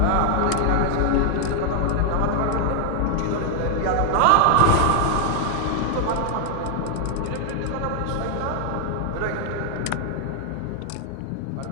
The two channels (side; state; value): both; different; correlation 0.00